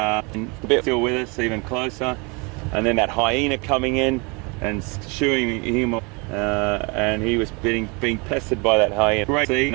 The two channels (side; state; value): left; quieter; 29.8 dB